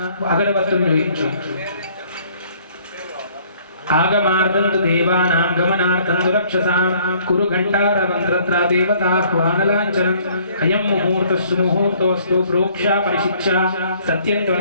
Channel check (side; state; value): both; inverted; correlation -0.59